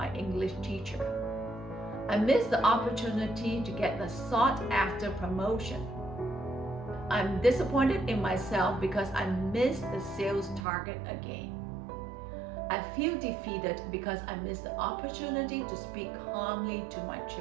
English teacher. I missed the opportunity to get the sought-after promotion. I'm disappointed in myself because I missed the sales target again. I feel defeated because I missed the opportunity to speak calmly to my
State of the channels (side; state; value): left; drops out; at 10.7 s